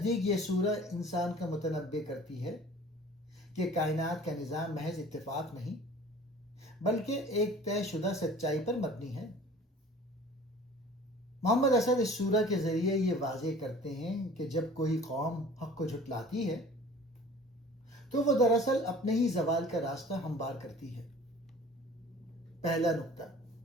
یہ سورہ انسان کا متنبع کرتی ہے کہ کائنات کا نظام محض اتفاق نہیں بلکہ ایک طے شدہ سچائی پر مبنی ہے۔ محمد اسد اس سورہ کے ذریعے یہ واضح کرتے ہیں کہ جب کوئی قوم حق کو جھٹلاتی ہے تو وہ دراصل اپنے ہی زوال کا راستہ ہموار کرتی ہے۔ پہلا نقطہ،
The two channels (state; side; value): normal; both; correlation 0.46